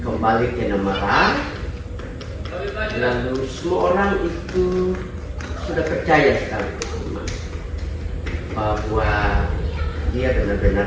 kembali ke Namara, lalu semua orang itu sudah percaya sekali bahwa dia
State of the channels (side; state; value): both; identical; correlation 1.00